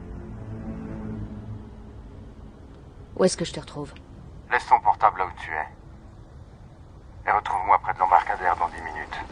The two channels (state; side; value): identical; both; correlation 1.00